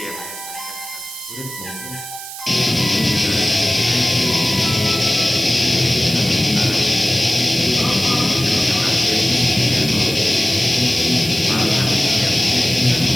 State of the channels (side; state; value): right; noise; hiss, 11 dB below the sound